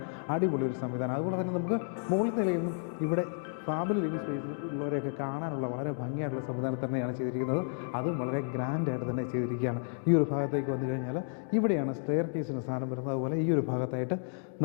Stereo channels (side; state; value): right; silent; digital silence